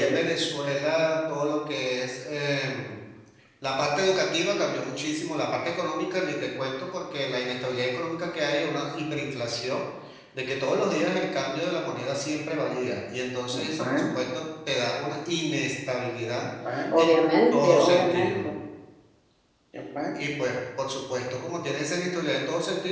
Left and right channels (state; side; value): identical; both; correlation 1.00